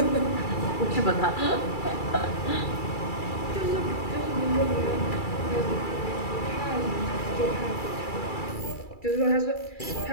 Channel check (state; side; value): late; right; 2.3 ms